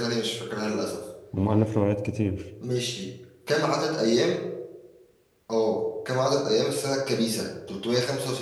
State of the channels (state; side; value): identical; both; correlation 1.00